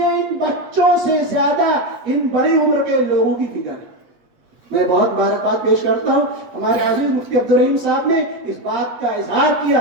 ان بچوں سے زیادہ ان بڑی عمر کے لوگوں کی فکر ہے. میں بہت مبارکباد پیش کرتا ہوں ہمارے عزیز مفتی عبدالرحیم صاحب نے اس بات کا اظہار کیا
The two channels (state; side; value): late; left; 8.8 ms